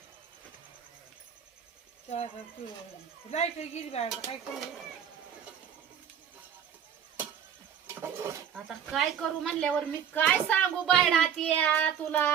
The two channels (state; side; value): quieter; left; 8.3 dB